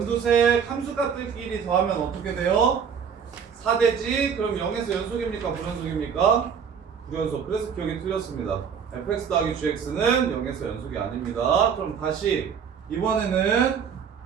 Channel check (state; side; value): quieter; left; 7.1 dB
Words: 함수값들끼리 더하면 어떻게 돼요? 4되지. 그럼 0에서 연속입니까? 불연속입니까? 불연속. 그래서 기억이 틀렸습니다. fx 더하기 gx는 0에서 연속이 아닙니다. 그럼 다시 이번에는